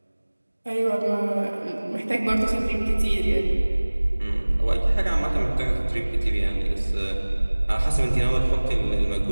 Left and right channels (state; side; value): inverted; both; correlation -1.00